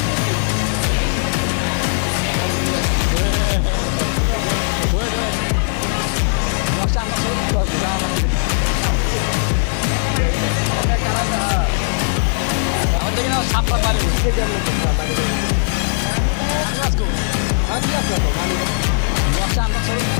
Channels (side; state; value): right; silent; 57 dB below the other